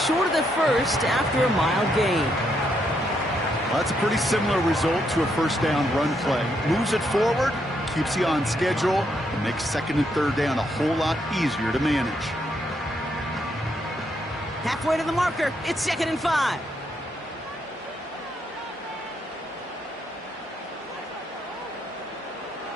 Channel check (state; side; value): normal; both; correlation 0.76